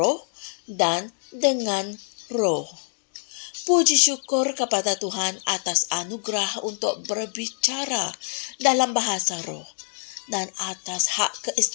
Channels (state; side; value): silent; right; digital silence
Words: dan dengan roh. Puji syukur kepada Tuhan atas anugerah untuk berbicara dalam bahasa roh dan atas hak